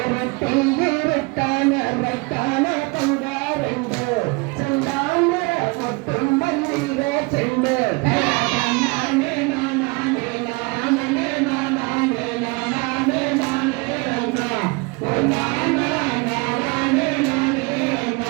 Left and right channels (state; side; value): quieter; left; 27.3 dB